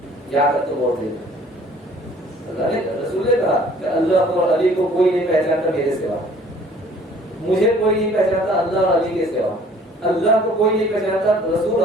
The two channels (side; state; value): both; normal; correlation 0.55